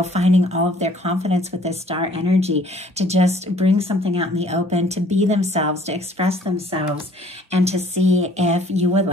finding all of their confidence with this star energy to just bring something out in the open, to be themselves, to express themselves, and to see if you would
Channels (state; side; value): normal; both; correlation 0.57